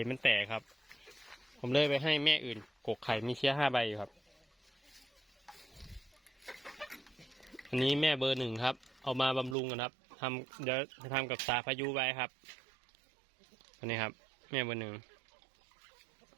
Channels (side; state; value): left; drops out; at 9.6 s